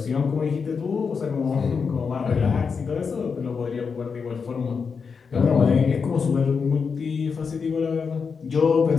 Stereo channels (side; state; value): right; quieter; 5.6 dB